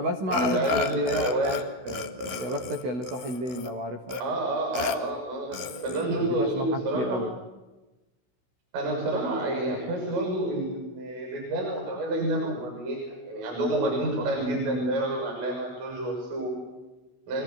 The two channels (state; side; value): late; left; 16 ms